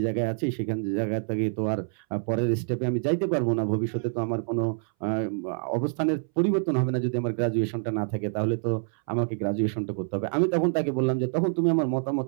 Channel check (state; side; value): silent; left; 60 dB below the other